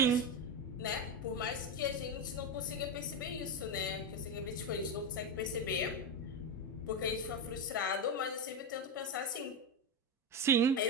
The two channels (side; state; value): both; normal; correlation 0.12